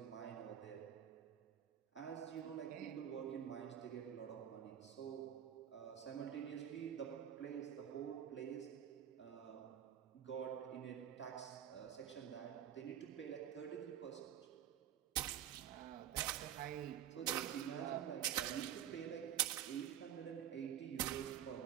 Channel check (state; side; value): quieter; left; 10.0 dB